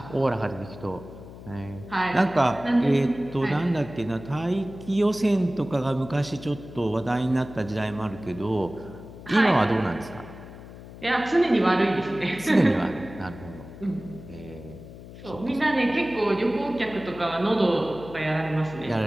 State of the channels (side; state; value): left; noise; hum, 15 dB below the sound